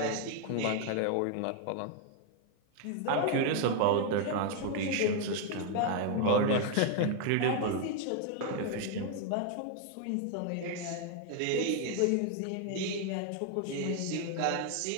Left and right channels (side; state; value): both; different; correlation 0.00